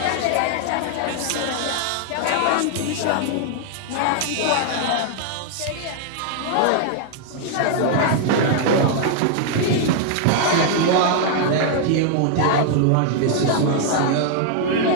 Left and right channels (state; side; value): different; both; correlation 0.00